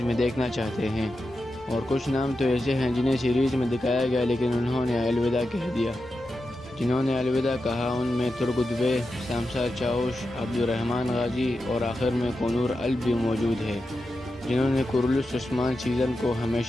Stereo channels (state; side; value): normal; both; correlation 0.90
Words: میں دیکھنا چاہتے ہیں، اور کچھ نام تو ایسے ہیں جنہیں سیریز میں دکھایا گیا لیکن انہوں نے الوداع کہہ دیا۔ جنہوں نے الوداع کہا ان میں ترگت بے، شمسار چاوش، عبدالرحمن غازی اور آخر میں کنور الب بھی موجود ہے، جنہوں نے کورلس عثمان سیزن کو